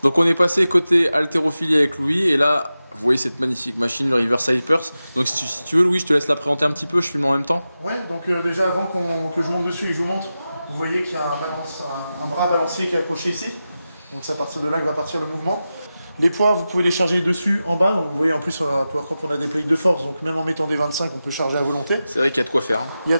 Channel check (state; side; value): inverted; both; correlation -0.93